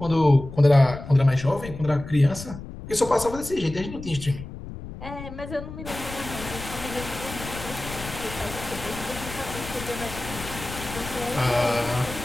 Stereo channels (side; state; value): left; noise; rumble, 11 dB below the sound